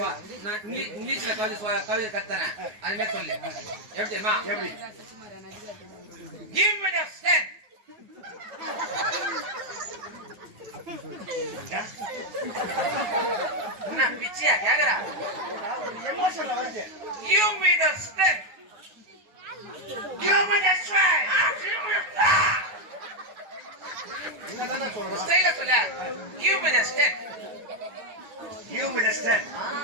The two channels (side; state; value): left; late; 9.3 ms